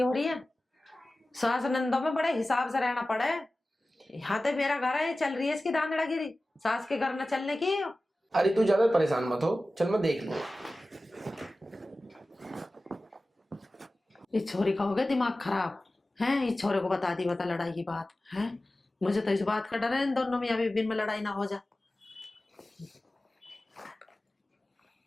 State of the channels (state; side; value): normal; both; correlation 0.96